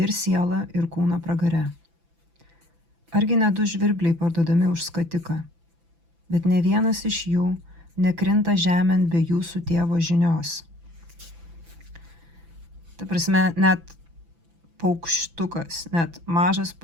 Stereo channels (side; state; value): left; late; 6.0 ms